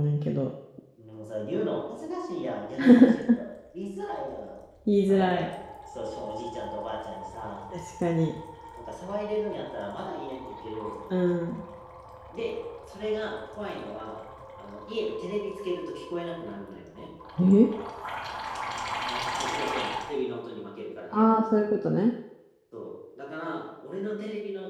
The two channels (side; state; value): both; identical; correlation 1.00